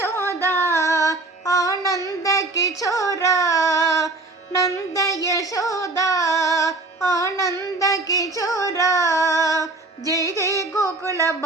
ಆನಂದ ಕಿಶೋರ ನಂದ ಯಶೋದ ಆನಂದ ಕಿಶೋರ. ಜಯ ಜಯ ಗೋಕುಲ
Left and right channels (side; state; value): left; quieter; 3.2 dB